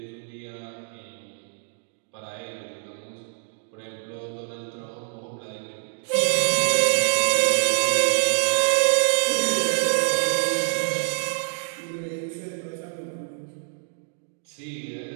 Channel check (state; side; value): silent; left; digital silence